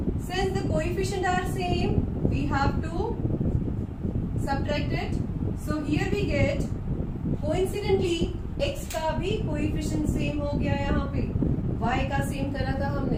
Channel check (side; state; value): both; identical; correlation 1.00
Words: since the coefficient are same we have to subtract it. So here we get coincidentally x का भी कोएफिशिएंट सेम हो गया. यहाँ पे y का सेम करा था